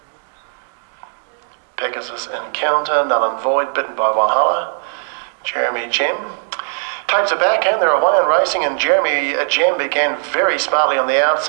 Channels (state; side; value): silent; left; 67 dB below the other